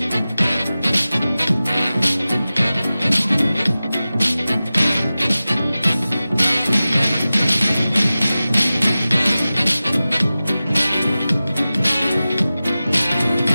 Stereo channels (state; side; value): inverted; both; correlation -0.96